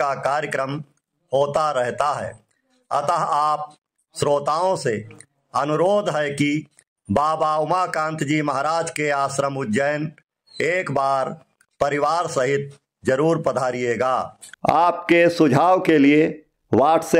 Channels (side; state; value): both; identical; correlation 1.00